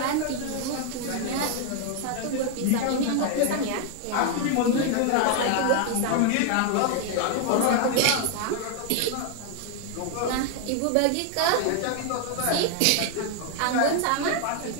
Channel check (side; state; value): both; different; correlation 0.00